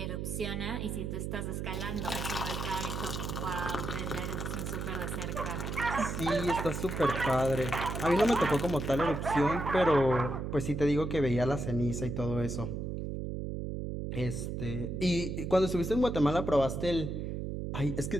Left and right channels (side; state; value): right; noise; hum, 4 dB below the sound